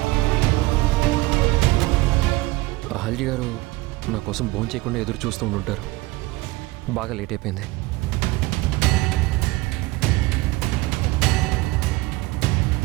అహల్య గారు నా కోసం భోజనం చేయకుండా ఎదురు చూస్తూ ఉండుంటారు. బాగా లేట్ అయిపోయింది.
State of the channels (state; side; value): quieter; left; 20.4 dB